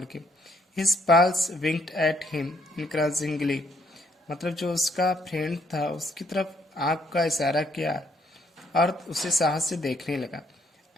के। His pals winked at him encouragingly. मतलब जो उसका फ्रेंड था उसकी तरफ आंख का इशारा किया और उसे साहस से देखने लगा।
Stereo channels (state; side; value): normal; both; correlation 0.69